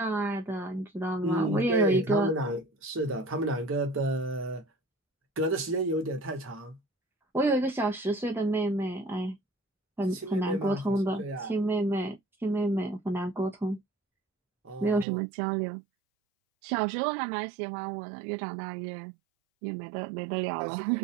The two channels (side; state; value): left; drops out; at 15.1 s